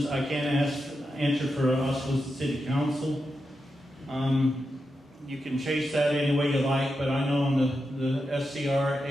I can't answer for us as the city council. You can chase that any way you like, but I know on the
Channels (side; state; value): both; normal; correlation 0.88